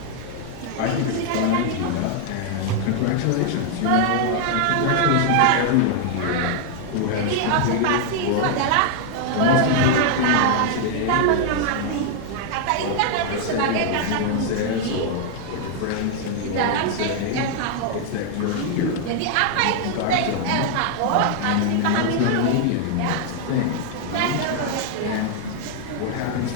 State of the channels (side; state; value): both; different; correlation 0.00